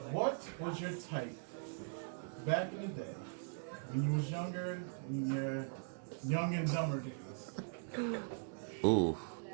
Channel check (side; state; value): left; silent; digital silence